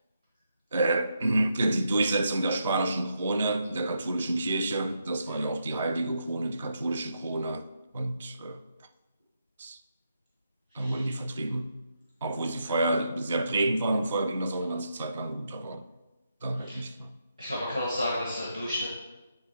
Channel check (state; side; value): inverted; both; correlation -0.81